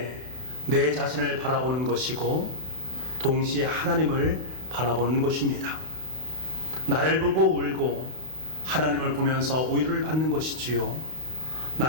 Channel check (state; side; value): late; left; 32 ms